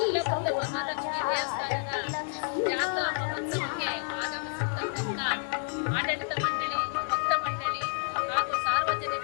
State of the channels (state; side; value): silent; right; 58 dB below the other